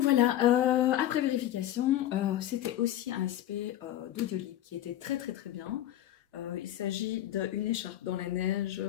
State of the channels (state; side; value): quieter; right; 12.7 dB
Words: voilà, après vérification, c'était aussi un aspect d'Audiolib qui était très très très bien. Il s'agit d'une écharpe dans la neige